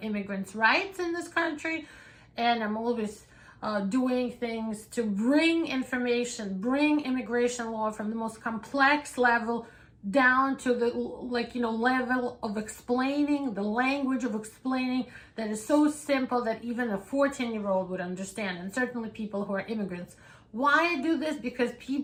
immigrants' rights in this country, and I'm always doing things to bring information, bring immigration law from the most complex level down to the level of explaining, the language of explaining that is so simple that even a 14-year-old would understand, and certainly people who are immigrants. Why I do this? Because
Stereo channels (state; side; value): identical; both; correlation 1.00